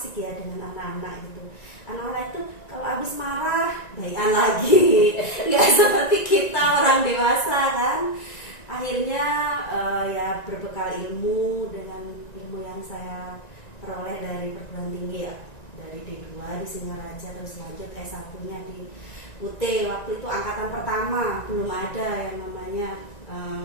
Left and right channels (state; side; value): late; right; 1.9 ms